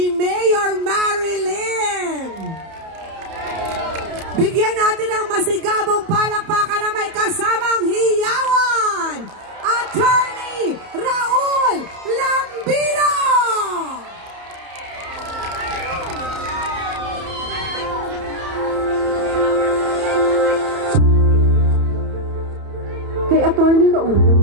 Mayor Marilyn. Bigyan natin ang masigabong palakpakan na may kasamang hiyawan, Attorney Raul Lambino! Kay Attorney Raul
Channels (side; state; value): left; late; 31 ms